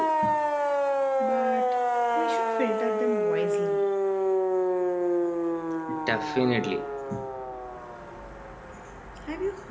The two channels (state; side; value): identical; both; correlation 1.00